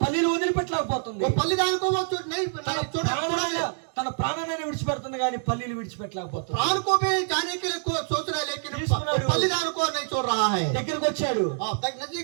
పల్లీలు వదిలిపెట్టలేకపోతుంది. वो पल्लीदान को वो नहीं తన छोड़ा ప్రాణమైన తన ప్రాణాన్ని విడిచిపెడుతుంది కానీ పల్లీలు విడిచిపెట్టలేకపోతుంది. प्राण को भी जाने के लिए सोच रहा है लेकिन తీసుకున్నాడు. बलिदान को नहीं छोड़ रहा है। దగ్గరికి వచ్చాడు,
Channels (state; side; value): silent; left; digital silence